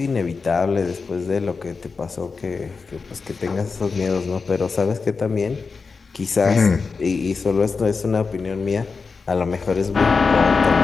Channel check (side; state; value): right; quieter; 4.7 dB